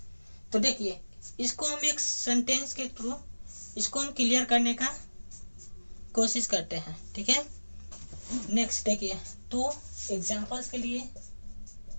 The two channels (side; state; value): both; inverted; correlation -1.00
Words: तो देखिए इसको हम एक सेंटेंस के थ्रू इसको हम क्लियर करने का कोशिश करते हैं, ठीक है। नेक्स्ट देखिए, तो एग्जांपल्स के लिए